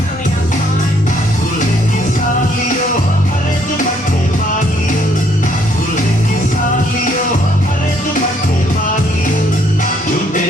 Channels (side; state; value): both; normal; correlation 0.68